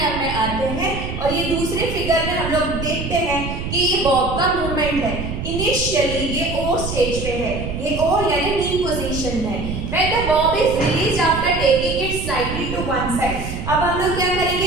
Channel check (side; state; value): right; noise; rumble, 6 dB below the sound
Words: में आते हैं और ये दूसरे फिगर में हम लोग देखते हैं कि ये बॉब का मूवमेंट है। इनिशियली ये ओ स्टेज पे है, ये ओ यानी मीन पोजीशन में। When the bob is released after taking it slightly to one side, अब हम लोग क्या